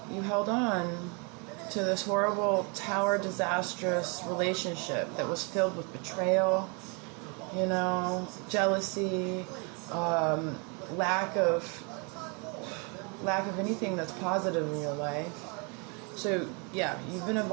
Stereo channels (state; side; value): quieter; left; 33.7 dB